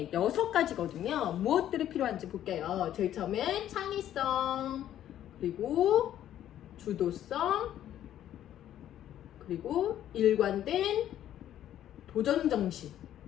6가지거든요. 무엇들이 필요한지 볼게요. 제일 처음엔 창의성, 그리고 주도성, 그리고 일관된 도전정신.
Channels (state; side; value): quieter; right; 11.5 dB